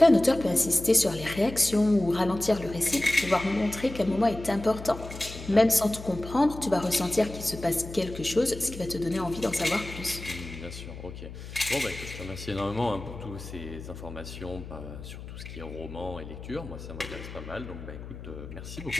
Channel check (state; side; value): noise; left; hum, 12 dB below the sound